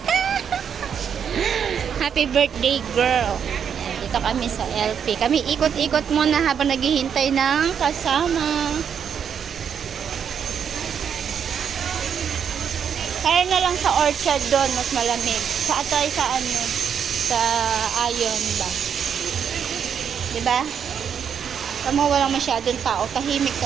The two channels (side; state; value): left; quieter; 7.7 dB